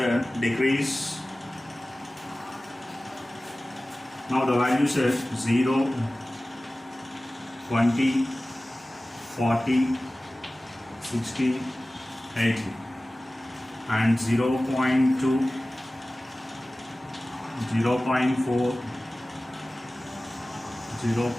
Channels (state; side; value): normal; both; correlation 0.97